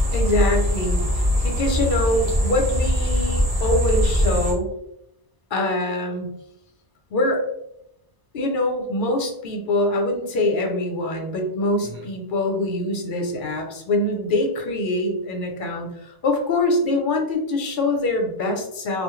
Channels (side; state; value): left; late; 1.0 ms